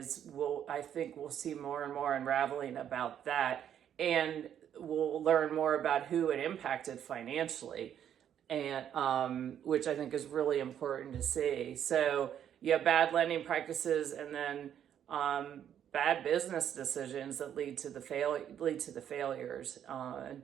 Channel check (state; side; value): quieter; left; 9.6 dB